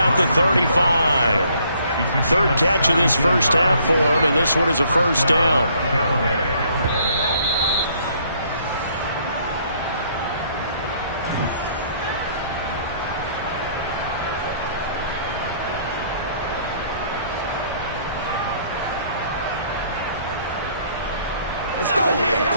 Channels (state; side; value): inverted; both; correlation -0.63